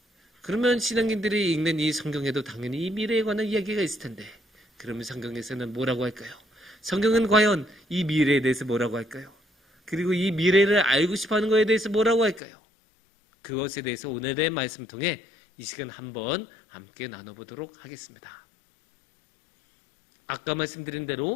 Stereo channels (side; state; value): right; drops out; at 12.4 s